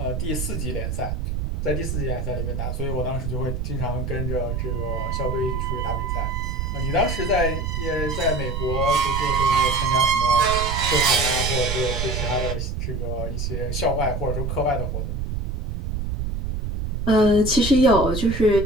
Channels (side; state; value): right; noise; rumble, 2 dB below the sound